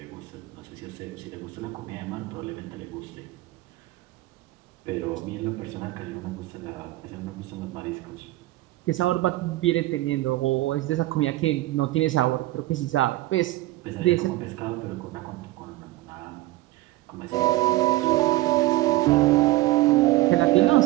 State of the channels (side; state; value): left; quieter; 18.1 dB